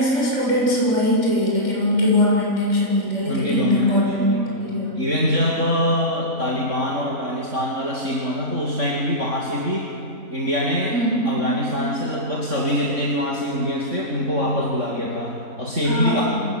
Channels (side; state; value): left; late; 3.6 ms